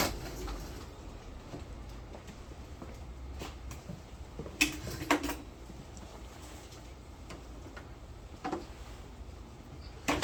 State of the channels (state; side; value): identical; both; correlation 1.00